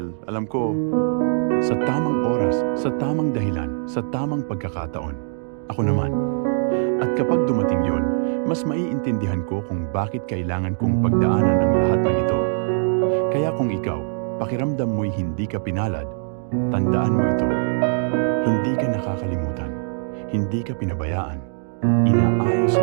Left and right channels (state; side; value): silent; left; digital silence